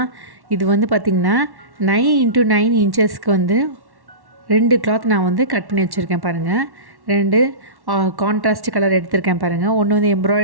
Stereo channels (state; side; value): late; left; 1.1 ms